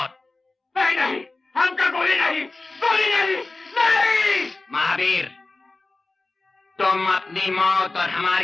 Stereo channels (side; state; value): right; quieter; 3.3 dB